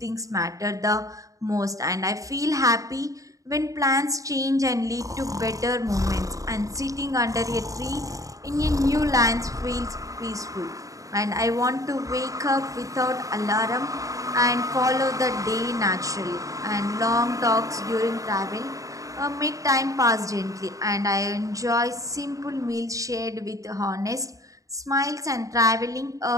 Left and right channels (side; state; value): left; late; 0.16 ms